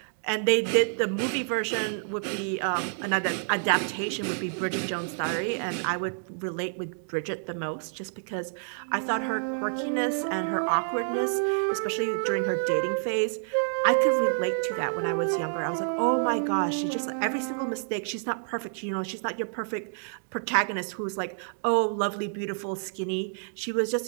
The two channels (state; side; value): silent; left; digital silence